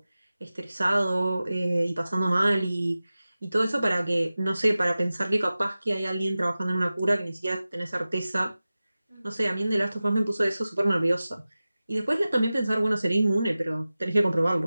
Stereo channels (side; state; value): both; inverted; correlation -0.96